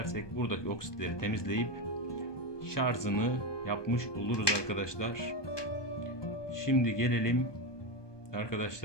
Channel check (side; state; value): right; late; 1.2 ms